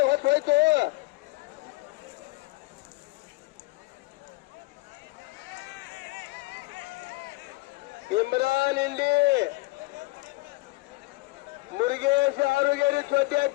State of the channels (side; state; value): right; quieter; 22.5 dB